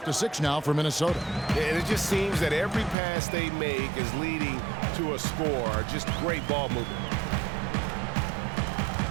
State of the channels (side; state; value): left; drops out; at 3.0 s